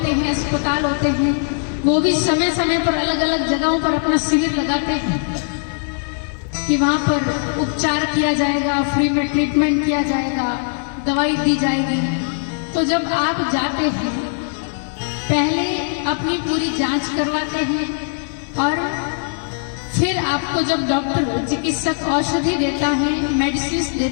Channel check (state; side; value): silent; right; digital silence